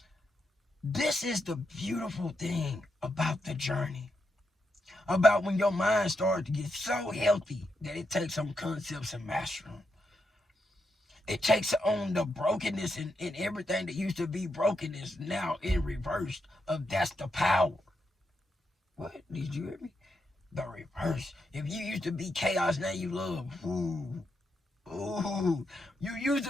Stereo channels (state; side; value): normal; both; correlation 0.83